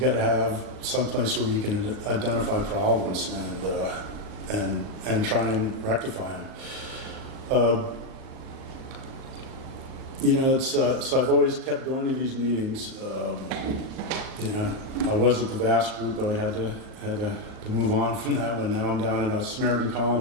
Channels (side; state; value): left; late; 38 ms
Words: to have some place where you can identify problems and try and rectify them. So I've always kept going to these meetings. I was at the Vass group, but I had to move on from that one. Now I'm down in a Samaritan